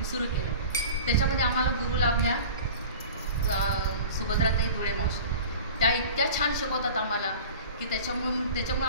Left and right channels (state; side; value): inverted; both; correlation -0.38